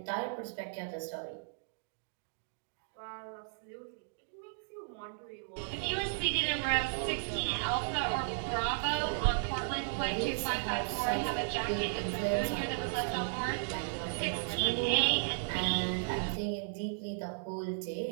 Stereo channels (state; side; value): silent; left; digital silence